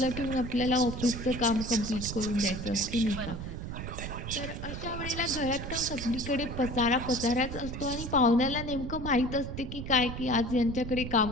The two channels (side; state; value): right; noise; rumble, 7 dB below the sound